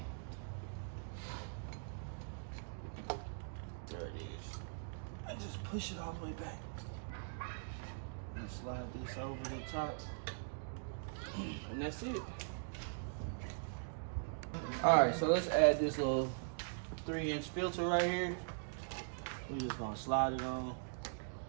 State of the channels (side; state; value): left; silent; digital silence